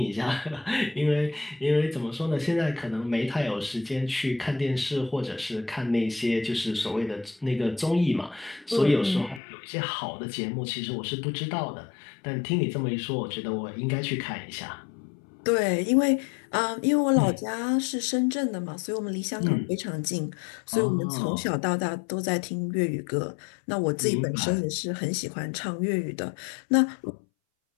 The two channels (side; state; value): right; drops out; at 9.4 s